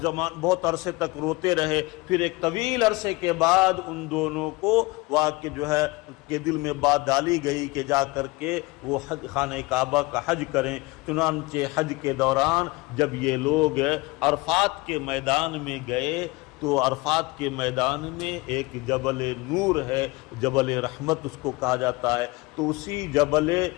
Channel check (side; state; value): right; quieter; 23.3 dB